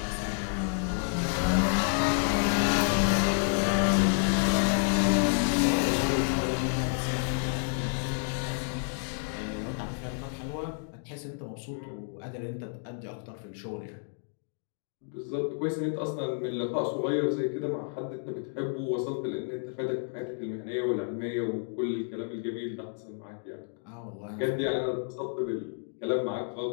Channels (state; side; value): silent; right; 58 dB below the other